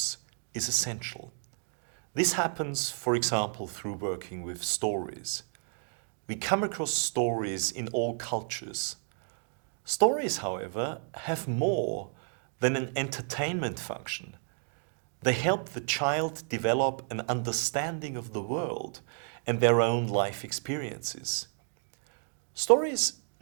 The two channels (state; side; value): silent; left; 57 dB below the other